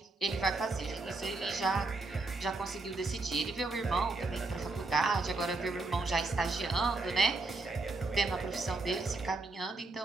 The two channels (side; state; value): left; quieter; 3.4 dB